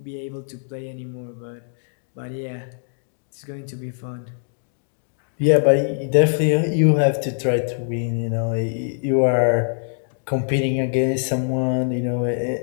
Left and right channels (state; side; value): silent; right; digital silence